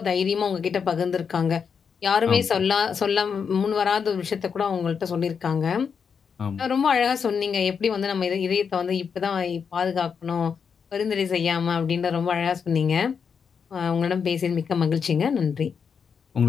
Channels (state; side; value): quieter; right; 6.4 dB